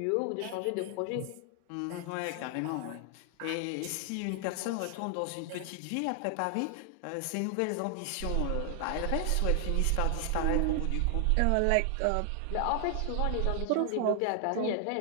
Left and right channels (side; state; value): both; different; correlation 0.00